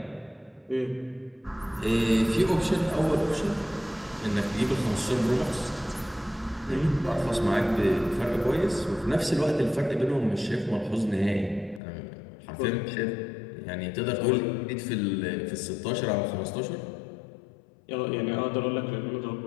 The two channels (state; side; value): drops out; right; at 11.8 s